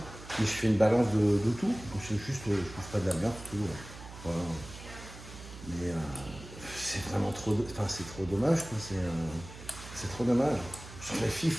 mais je fais une balance de tout. Je bouffe pas de la merde, tout. Voilà. Mais c'est vraiment trop, c'est trop dommage, quoi. C'est trop dommage. Je trouve que les filles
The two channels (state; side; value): noise; right; hum, 15 dB below the sound